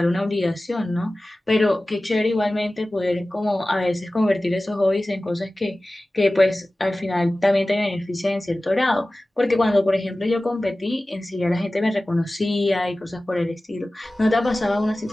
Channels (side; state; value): both; normal; correlation 0.97